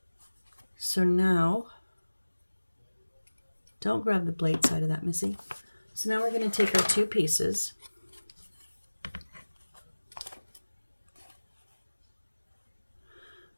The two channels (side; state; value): both; inverted; correlation -1.00